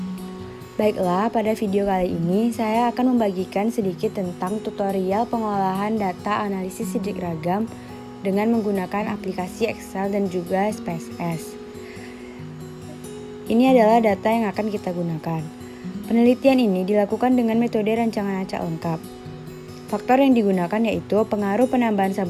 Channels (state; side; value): identical; both; correlation 1.00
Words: Baiklah, pada video kali ini saya akan membagikan sedikit tentang tutorial pengolahan data analisis sidik ragam dengan menggunakan aplikasi Excel dan juga SPSS. Ini adalah data yang akan kita gunakan. Penelitian ini dilakukan dengan metode rancangan acak lengkap. Faktor yang digunakan yaitu pengaruh penambahan